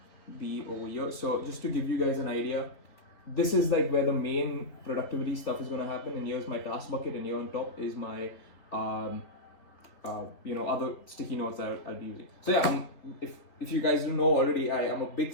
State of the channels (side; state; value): right; late; 3.9 ms